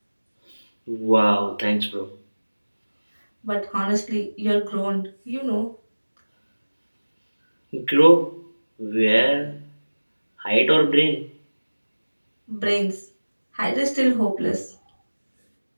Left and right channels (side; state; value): both; inverted; correlation -1.00